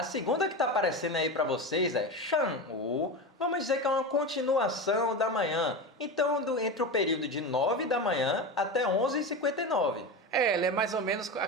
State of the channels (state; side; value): normal; both; correlation 0.22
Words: segunda que está aparecendo aí para vocês é 上午. Vamos dizer que é uma continuação da manhã. Então, entre o período de 9 da manhã até 11h59. Ele é mais ou menos